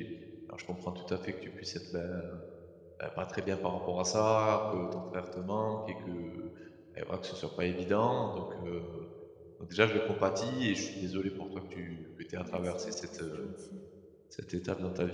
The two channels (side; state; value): both; identical; correlation 1.00